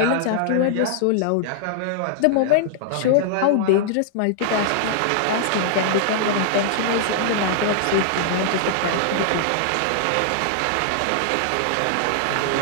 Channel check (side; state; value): both; different; correlation -0.01